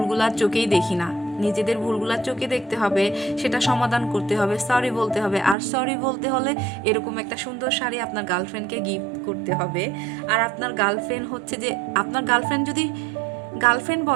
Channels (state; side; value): drops out; left; at 5.6 s